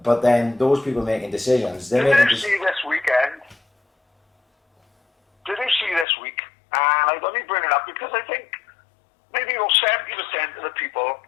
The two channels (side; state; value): right; drops out; at 6.1 s